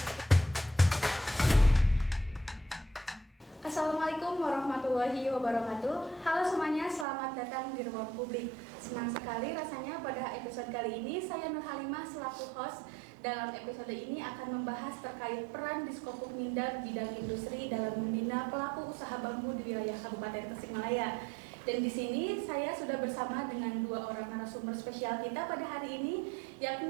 Assalamualaikum warahmatullahi wabarakatuh. Halo semuanya, selamat datang di Ruang Publik. Senang sekali rasanya pada episode kali ini saya Nur Halimah selaku host. Dalam episode ini akan membahas terkait peran Diskopuk Mindag bidang industri dalam membina pelaku usaha bambu di wilayah Kabupaten Tasikmalaya. Dan di sini saya sudah bersama dengan dua orang narasumber spesial kita pada hari ini,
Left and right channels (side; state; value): left; drops out; at 7.1 s